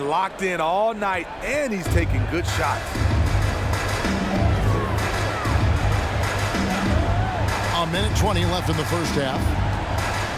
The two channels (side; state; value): both; identical; correlation 1.00